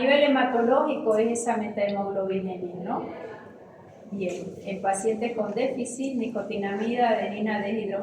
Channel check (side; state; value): both; identical; correlation 1.00